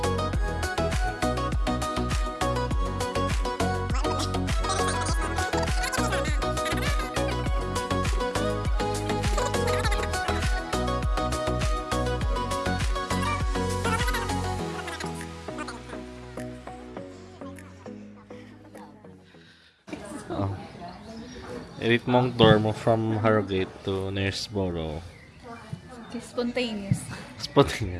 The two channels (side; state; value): both; identical; correlation 1.00